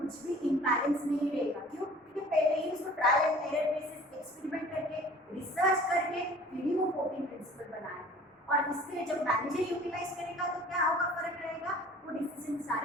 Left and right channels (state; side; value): normal; both; correlation 0.47